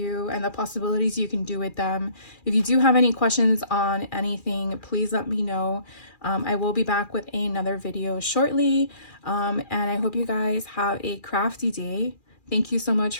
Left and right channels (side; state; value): right; late; 2.4 ms